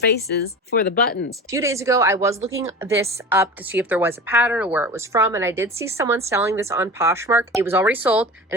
for the buttons. A few days ago, I was looking this up to see if there was a pattern or where it was from, and I did see someone selling this on Poshmark. It was already sold, and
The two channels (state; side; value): normal; both; correlation 0.34